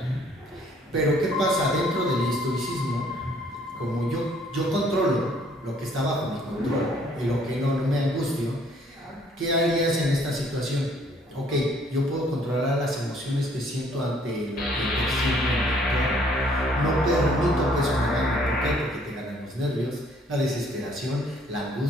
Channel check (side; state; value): both; normal; correlation 0.62